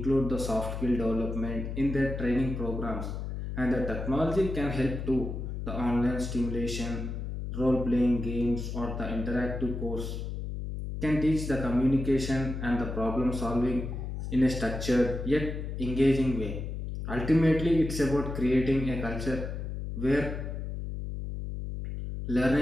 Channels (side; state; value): left; noise; hum, 5 dB below the sound